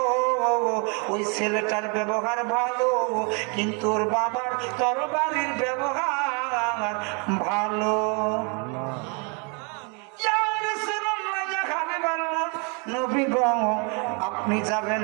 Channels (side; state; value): left; quieter; 34.6 dB